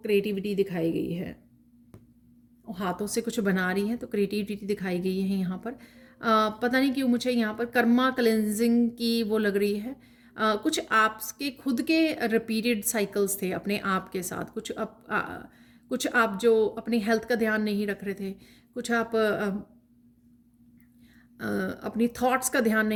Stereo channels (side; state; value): both; identical; correlation 1.00